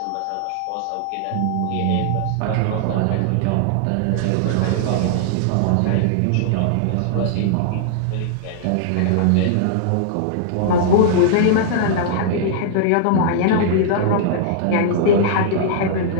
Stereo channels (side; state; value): both; different; correlation -0.01